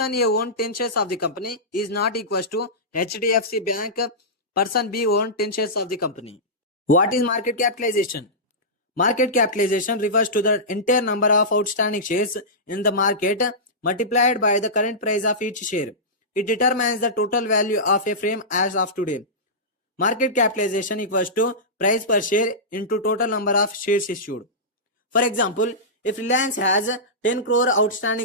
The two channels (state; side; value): normal; both; correlation -0.16